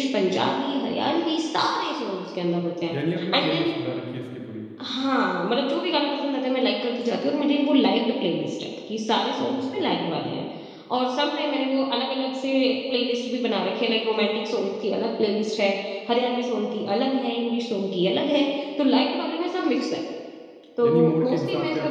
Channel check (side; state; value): both; identical; correlation 1.00